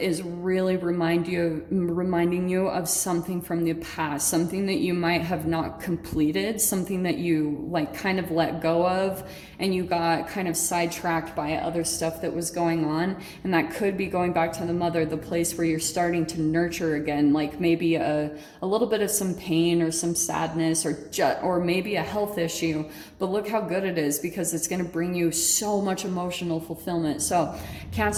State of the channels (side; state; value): both; identical; correlation 1.00